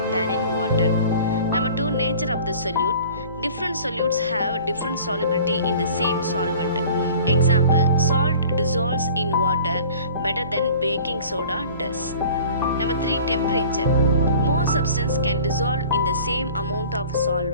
than in water. Number 2, nature of the solute. Different solutes have different solubility in the same solvent. Example, salt dissolves in water better than baking soda does. Number 3, temperature. More substance can dissolve in the same amount of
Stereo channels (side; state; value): both; inverted; correlation -0.45